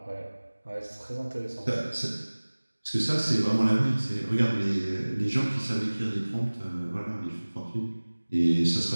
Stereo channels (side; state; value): both; inverted; correlation -1.00